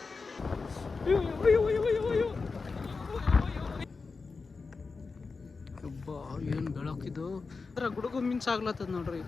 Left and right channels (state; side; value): quieter; right; 4.4 dB